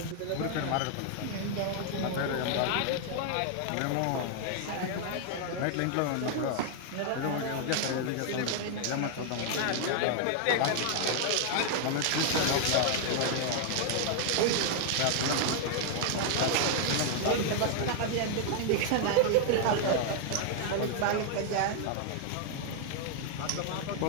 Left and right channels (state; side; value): different; both; correlation 0.00